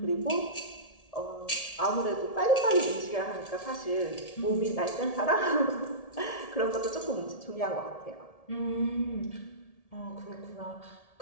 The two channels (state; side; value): late; right; 1.7 ms